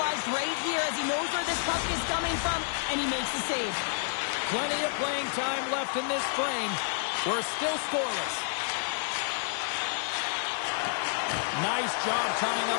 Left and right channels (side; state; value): right; silent; 58 dB below the other